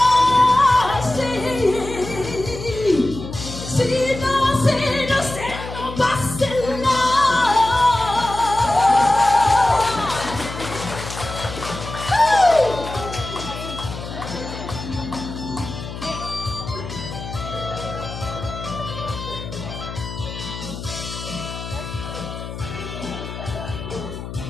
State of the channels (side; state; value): left; noise; hum, 9 dB below the sound